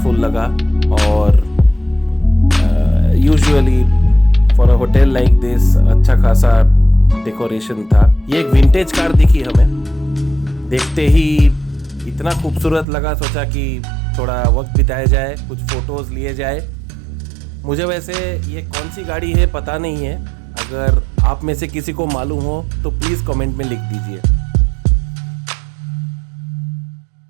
लगा और usually for a hotel like this अच्छा खासा डेकोरेशन था। ये एक विंटेज कार दिखी हमें, देखते ही इतना खूबसूरत लगा, सोचा कि थोड़ा वक्त बिताया जाए, कुछ फ़ोटोज़ लिए जाए। मुझे वैसे ये कौन सी गाड़ी है पता नहीं है, अगर आप में से किसी को मालूम हो तो प्लीज़ कमेंट में लिख दीजिए।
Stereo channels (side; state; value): left; drops out; at 12.9 s